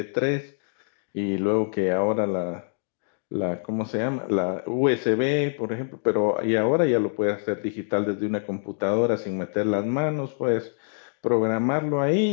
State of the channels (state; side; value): silent; right; digital silence